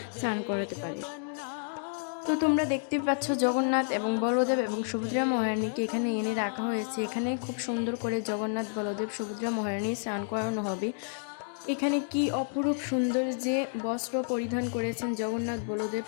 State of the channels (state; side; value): silent; right; digital silence